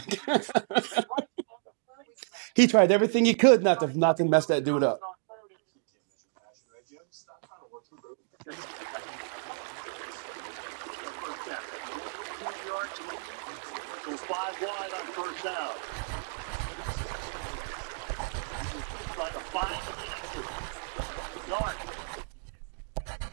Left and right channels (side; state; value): left; silent; digital silence